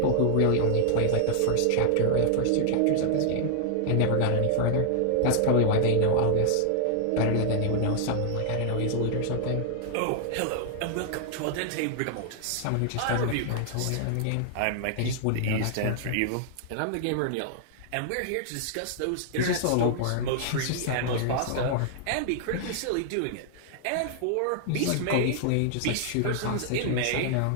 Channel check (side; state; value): both; different; correlation -0.01